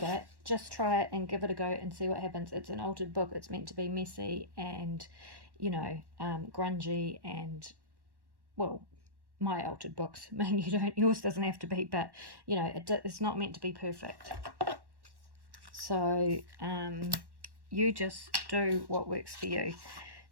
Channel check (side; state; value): left; late; 1.1 ms